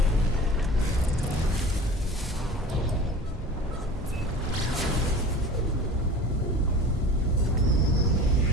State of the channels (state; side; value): normal; both; correlation 0.39